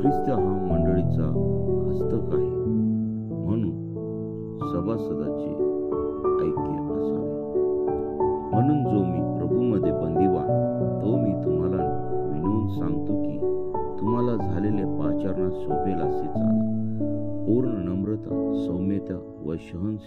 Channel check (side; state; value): both; identical; correlation 1.00